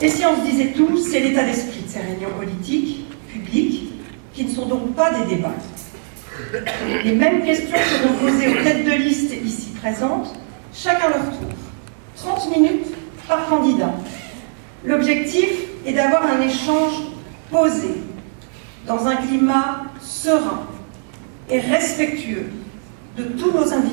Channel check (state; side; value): silent; left; digital silence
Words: ?» Et si on se disait tout, c'est l'état d'esprit de ces réunions politiques, publiques, qui ne sont donc pas des débats. Les mêmes questions seront posées aux têtes de liste ici présentes, chacun leur tour. 30 minutes par candidat. L'objectif est d'avoir un échange posé, dans un climat serein et respectueux de tous nos